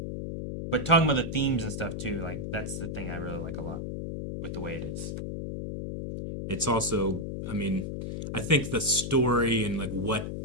talking about the themes and stuff too, like that's the thing I really like a lot with the way it is. It's also, I mean, I think the story and like what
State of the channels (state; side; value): noise; left; hum, 5 dB below the sound